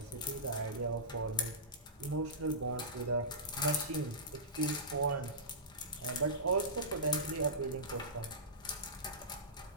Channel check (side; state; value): both; normal; correlation -0.18